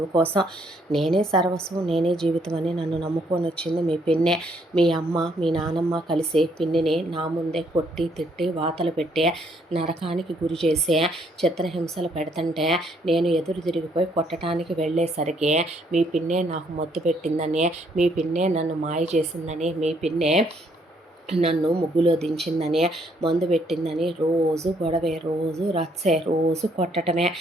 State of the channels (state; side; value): normal; both; correlation 0.69